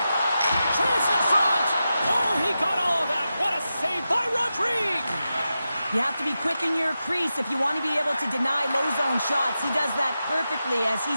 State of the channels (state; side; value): inverted; both; correlation -0.91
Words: Chance in front. Oh, he got all of that. What a save by Rodrigue. You have to be quick in your crease if you want to be able to deny low zone shots. He does that perfectly as